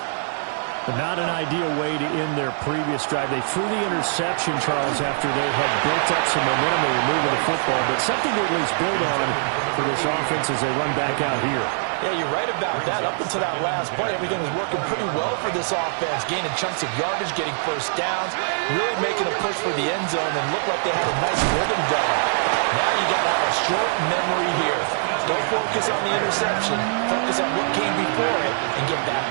But not an ideal way to end their previous drive. They threw the interception, Charles, after they had built up some momentum. They were moving the football, but something to at least build on for this offense as they run back out here. Yeah, you're right about that. Up until that last play, everything was working pretty well for this offense, gaining chunks of yardage, getting first downs, really making a push for the end zone, and looked like they had a nice rhythm going. Now you got to have a short memory here. Don't focus on the interception. Focus on what came before it and get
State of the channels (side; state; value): left; silent; 56 dB below the other